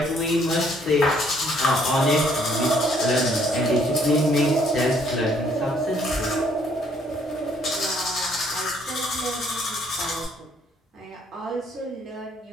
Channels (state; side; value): normal; both; correlation 0.65